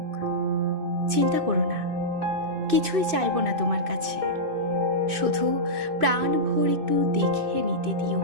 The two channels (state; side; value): late; left; 2.6 ms